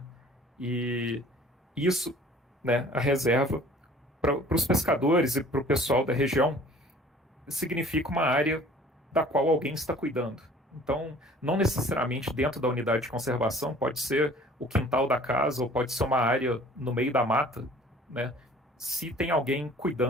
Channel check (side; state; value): both; normal; correlation 0.51